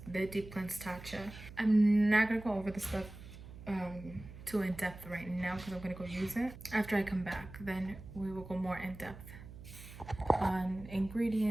the Deep Cleanse Tatcha. I'm not gonna go over the stuff too in depth right now, because I'm gonna go use it. After I come back, then we will go more in depth on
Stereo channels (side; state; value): right; noise; hum, 15 dB below the sound